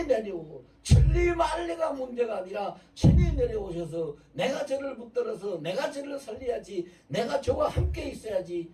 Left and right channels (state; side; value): identical; both; correlation 1.00